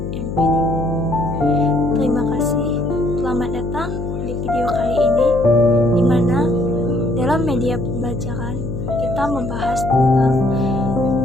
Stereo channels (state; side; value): noise; left; hum, 5 dB below the sound